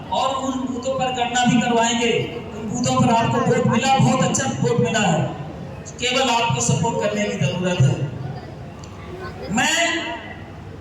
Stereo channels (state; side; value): identical; both; correlation 1.00